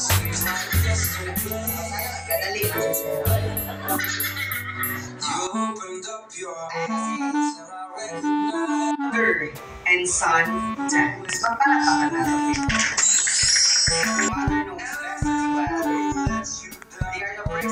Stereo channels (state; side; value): identical; both; correlation 1.00